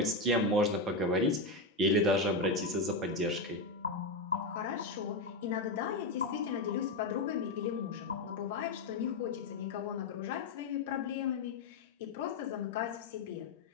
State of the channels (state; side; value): quieter; right; 3.1 dB